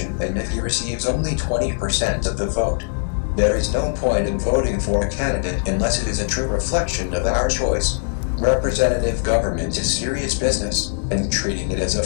than if he receives only 20% of the vote. There is no point in voting for a candidate unless it is a true reflection of our choice. Representative government is serious business, and treating it as a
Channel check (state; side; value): silent; right; 60 dB below the other